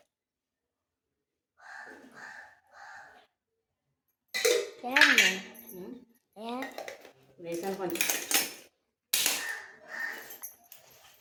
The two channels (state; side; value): identical; both; correlation 1.00